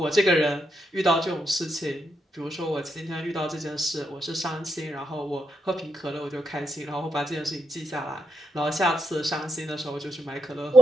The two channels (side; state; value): both; normal; correlation 0.81